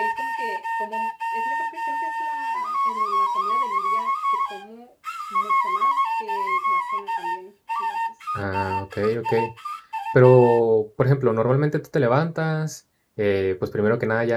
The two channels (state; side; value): identical; both; correlation 1.00